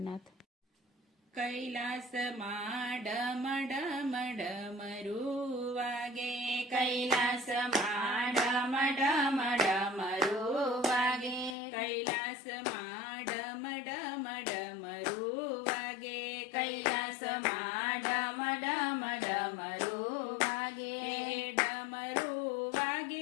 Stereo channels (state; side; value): drops out; right; at 11.6 s